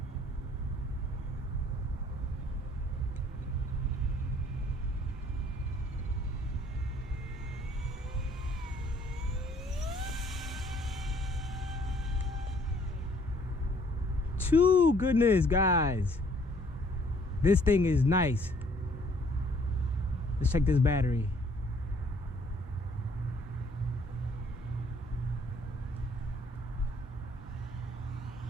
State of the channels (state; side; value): normal; both; correlation 0.61